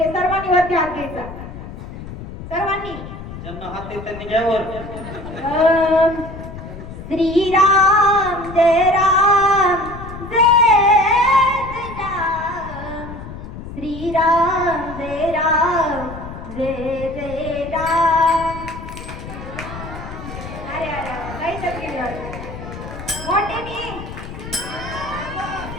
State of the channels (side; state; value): left; noise; rumble, 11 dB below the sound